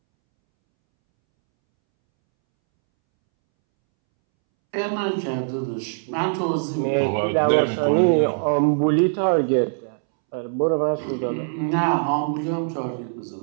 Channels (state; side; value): silent; left; 64 dB below the other